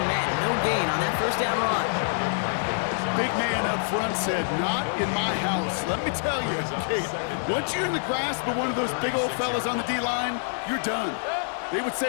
met. No gain on that first down run. Big man up front said, "Not in my house." Let me tell you, Kate, once you're in the grasp of one of those big old fellas on the D-line, you're done. They would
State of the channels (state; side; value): silent; right; 61 dB below the other